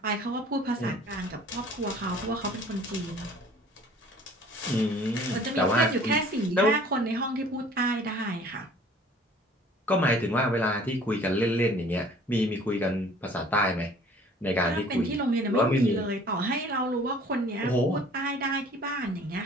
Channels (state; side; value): normal; both; correlation 0.51